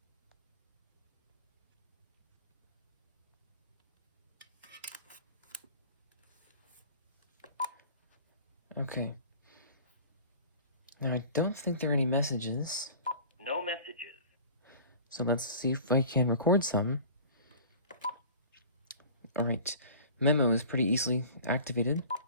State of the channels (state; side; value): inverted; both; correlation -0.43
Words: Okay. Now I don't think there are any messages. No messages. So let's see if I can record some. Alright, memo is pretty easily activated.